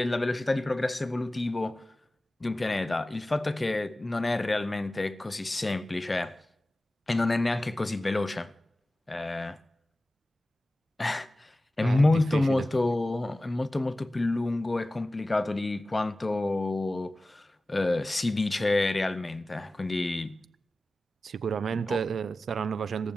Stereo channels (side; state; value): both; normal; correlation 0.96